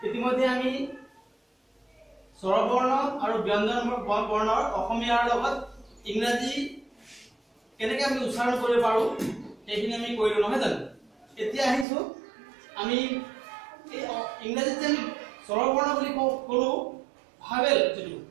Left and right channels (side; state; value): left; drops out; at 11.9 s